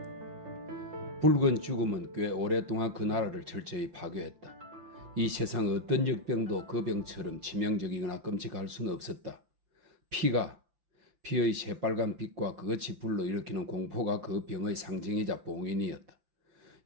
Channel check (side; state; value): left; late; 5.8 ms